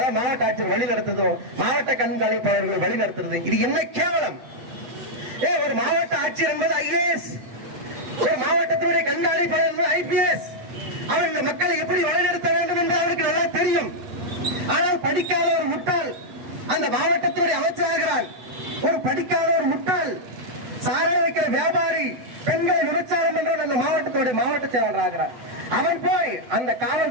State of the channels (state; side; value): late; left; 7.8 ms